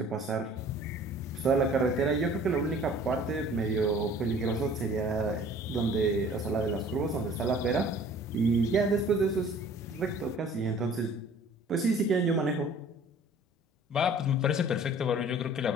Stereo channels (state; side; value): normal; both; correlation 0.50